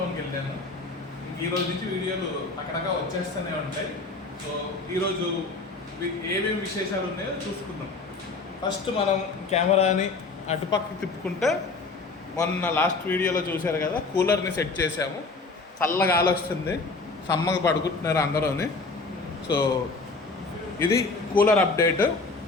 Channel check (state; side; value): quieter; right; 3.8 dB